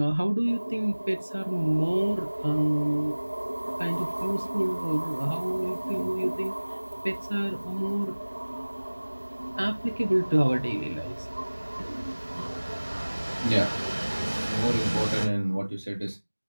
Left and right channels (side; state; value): both; inverted; correlation -1.00